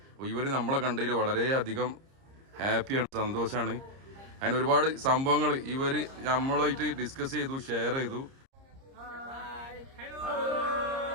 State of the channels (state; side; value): late; left; 30 ms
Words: അപ്പോൾ ഇവർ നമ്മളെ കണ്ടതിൽ വളരെയധികം ഹാപ്പിയാണ്, സന്തോഷമാണ്. അങ്ങനെ ഒരുപാട് സംഭവങ്ങൾ ഇവർ നമ്മളായിട്ട് ഡിസ്കസ് ചെയ്തു, ഷെയർ ചെയ്തു.